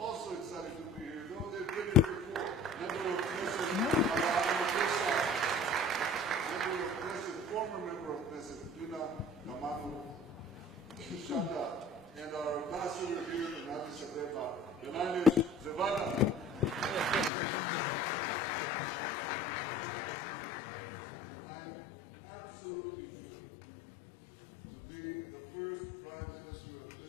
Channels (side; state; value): right; drops out; at 17.3 s